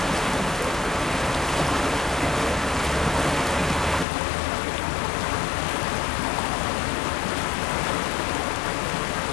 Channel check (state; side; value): drops out; right; at 4.0 s